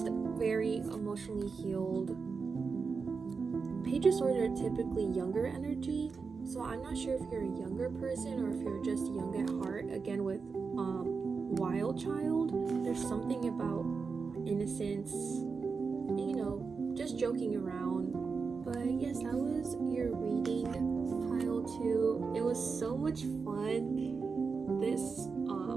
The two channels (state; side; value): quieter; left; 5.0 dB